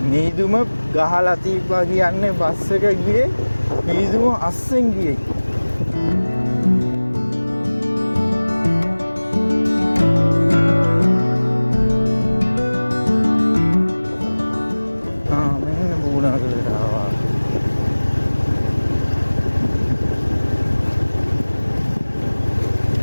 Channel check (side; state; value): both; inverted; correlation -1.00